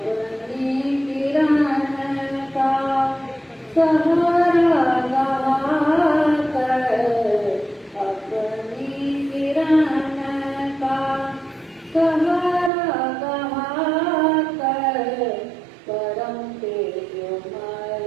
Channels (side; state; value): left; drops out; at 12.7 s